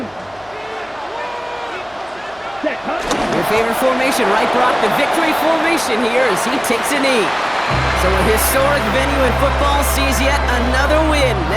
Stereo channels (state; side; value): noise; right; hum, 29 dB below the sound